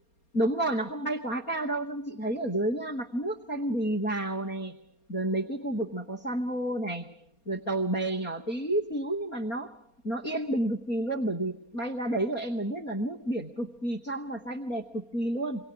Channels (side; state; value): right; late; 4.3 ms